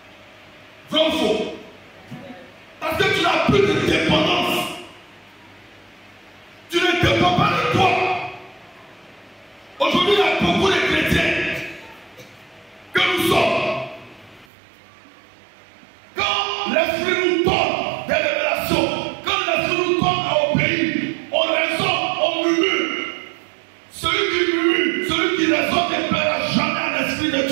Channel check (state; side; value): drops out; left; at 14.5 s